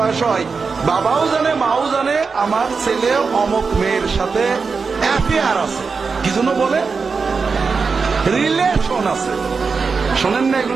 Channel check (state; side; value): quieter; left; 4.9 dB